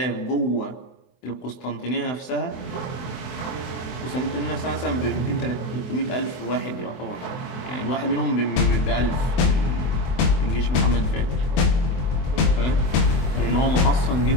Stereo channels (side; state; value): right; late; 24 ms